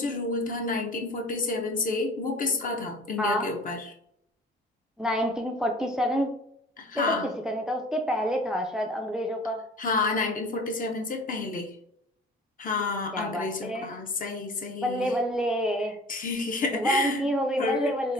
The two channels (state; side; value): normal; both; correlation 0.43